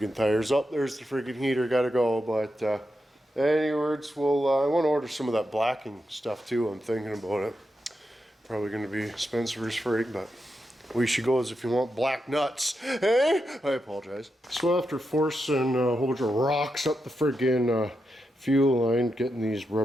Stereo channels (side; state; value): both; normal; correlation 0.86